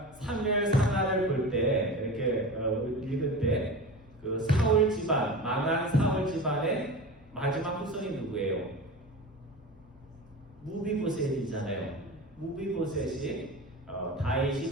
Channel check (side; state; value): both; normal; correlation 0.30